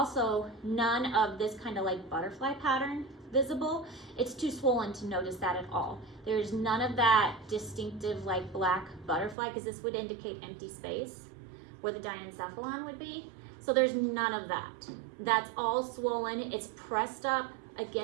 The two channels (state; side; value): drops out; left; at 9.3 s